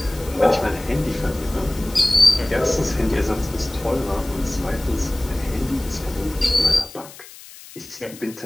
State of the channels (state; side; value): noise; left; hiss, 18 dB below the sound